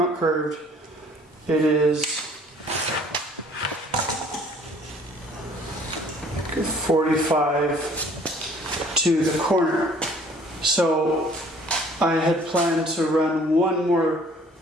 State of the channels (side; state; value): both; normal; correlation 0.55